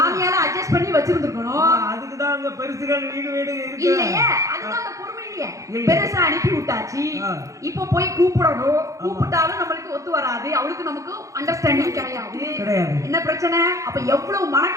அட்ஜஸ்ட் பண்ணி வச்சிருந்துக்கணும். அதுக்கு தான் அங்க பெருசுகள் வீடு இருக்கு இல்லையே, அதுதான் அந்த பொறுமை இல்லையே. பெருசா அனுப்பி விட்டாச்சு, இப்போ போய் கூப்பிடணும். கூப்பிட்டாலும் நம்மளுக்கு ஒத்து வராது, அவளுக்கு நமக்கு அண்டர்ஸ்டாண்டிங் கிடையாது. என்ன பிரச்சனை? அப்ப எவ்வளவு மன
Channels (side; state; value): left; late; 0.15 ms